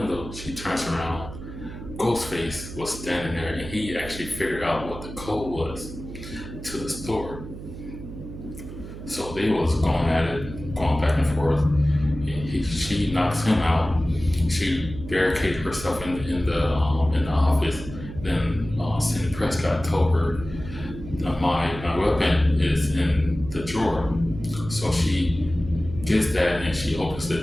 she turns around. Ghostface was standing there, and he actually figured out what the code was to the store. So they was going at it, going back and forth. She knocks him out. She barricaded herself in the office. Then Sidney Prescott told her, my weapon is in the drawer. So she gets that, and she opens it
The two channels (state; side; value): noise; right; hum, 11 dB below the sound